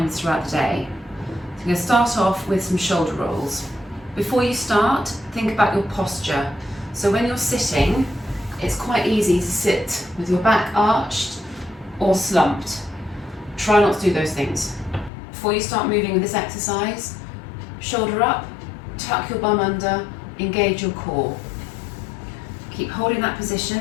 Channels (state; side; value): drops out; right; at 15.1 s